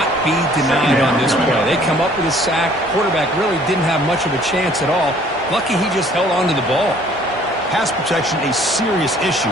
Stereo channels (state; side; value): normal; both; correlation 0.57